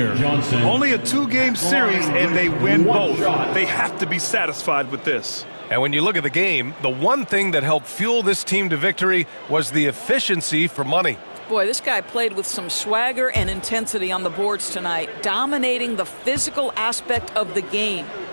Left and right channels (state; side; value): inverted; both; correlation -1.00